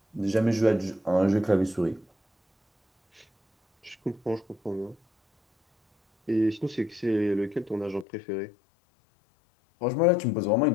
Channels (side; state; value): right; drops out; at 8.1 s